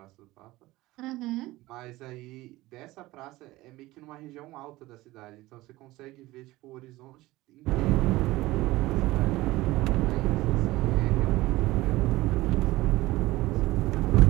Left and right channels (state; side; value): quieter; left; 18.6 dB